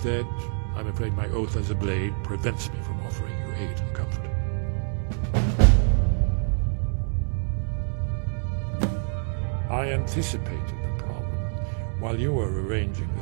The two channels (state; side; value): silent; left; 61 dB below the other